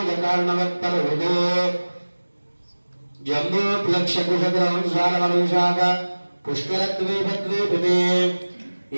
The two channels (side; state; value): both; inverted; correlation -1.00